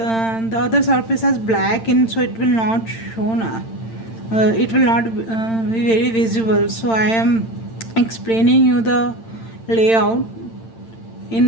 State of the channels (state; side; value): late; right; 8.9 ms